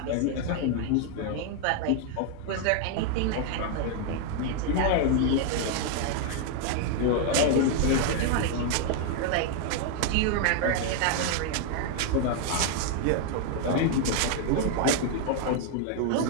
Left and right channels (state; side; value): different; both; correlation 0.00